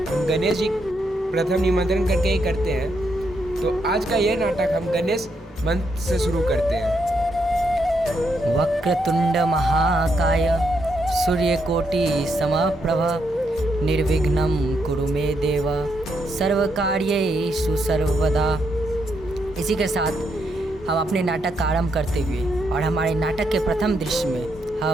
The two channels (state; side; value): normal; both; correlation 0.78